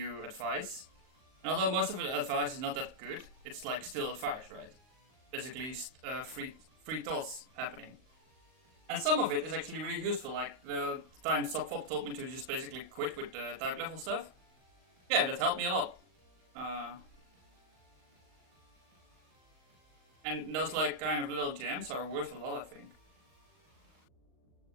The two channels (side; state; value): left; late; 39 ms